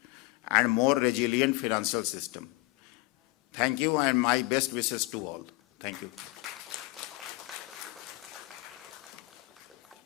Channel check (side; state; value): right; quieter; 22.3 dB